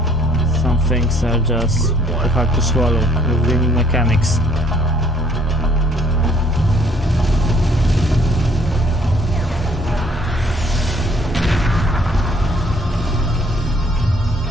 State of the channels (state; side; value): normal; both; correlation 0.62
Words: some things are just hard to swallow with the new mechanics.